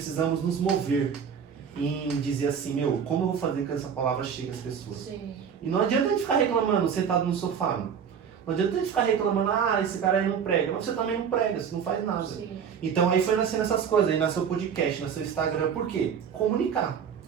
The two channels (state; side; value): quieter; left; 7.4 dB